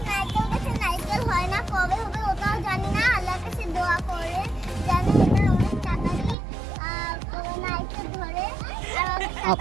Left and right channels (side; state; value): left; drops out; at 6.4 s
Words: নারকেল হয় না, কবে হবে ওটাও জানি না। আল্লাহর কাছে দোয়া করে জানি এটা অনেক তাড়াতাড়ি নারকেল ধরে আর অনেক